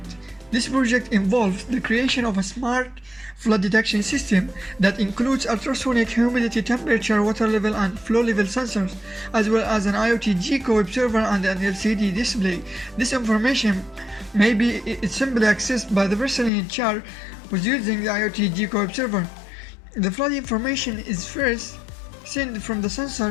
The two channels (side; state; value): right; drops out; at 16.5 s